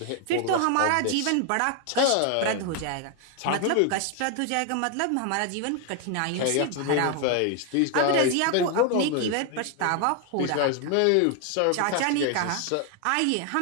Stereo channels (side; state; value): both; different; correlation 0.00